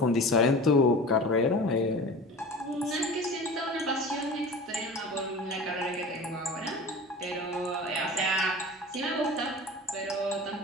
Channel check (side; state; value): both; normal; correlation 0.36